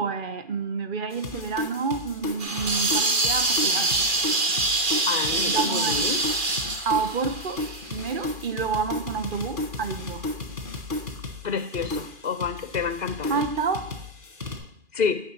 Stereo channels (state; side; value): late; left; 2.4 ms